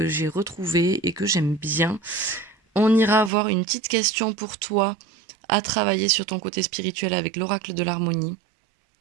j'ai retrouvé et que j'aime bien. On ira avoir une petite question pour toi à travailler sur ton côté spirituel avec l'oracle de l'harmonie.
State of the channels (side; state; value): left; drops out; at 3.3 s